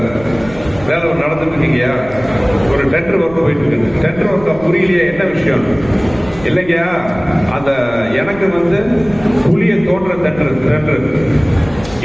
வேலை நடந்துட்டு இருக்கீங்கயா, ஒரு டெண்டர் ஒர்க் போயிட்டு இருக்கு. டெண்டர் ஒர்க் புரியலையே, என்ன விஷயம்? இல்லைங்கயா, அந்த எனக்கு வந்து குழியை தோன்ற டெண்டர்,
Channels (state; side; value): noise; right; rumble, 17 dB below the sound